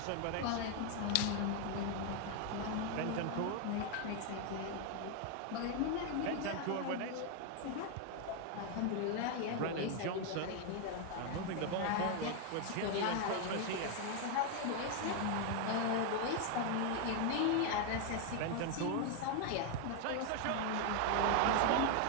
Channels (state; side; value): different; both; correlation 0.01